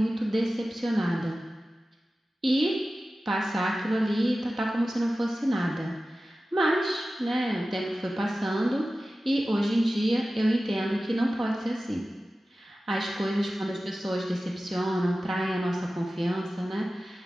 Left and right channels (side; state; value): both; normal; correlation 0.95